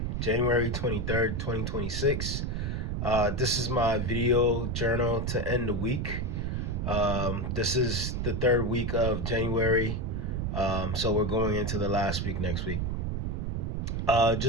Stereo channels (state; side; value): noise; right; rumble, 1 dB below the sound